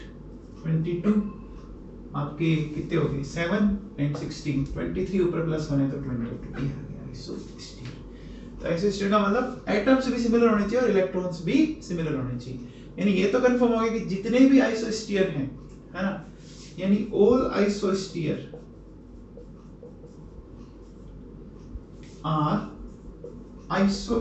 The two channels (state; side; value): identical; both; correlation 1.00